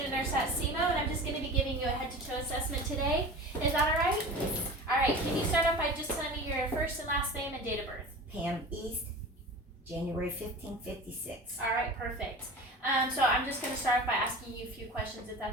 nurse at SEMO, and I'm just going to be giving you a head-to-toe assessment today. Is that all right? All right. Can you start off by just telling me your first and last name and date of birth? Pam East, January 1556. All right. Perfect. So I'm just going to start off by asking you a few questions, if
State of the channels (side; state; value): both; normal; correlation 0.35